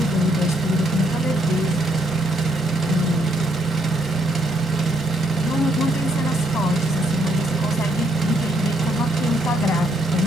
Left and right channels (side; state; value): both; normal; correlation 0.72